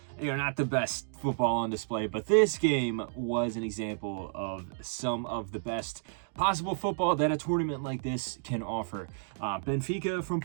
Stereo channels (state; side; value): silent; left; digital silence